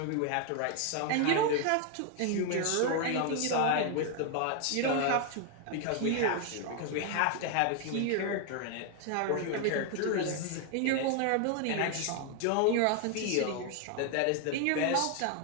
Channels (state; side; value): different; both; correlation 0.00